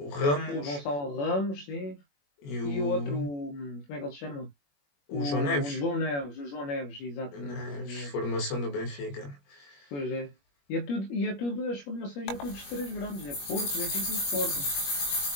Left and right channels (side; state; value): right; late; 21 ms